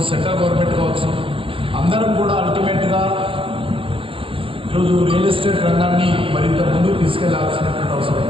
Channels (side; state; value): left; late; 0.26 ms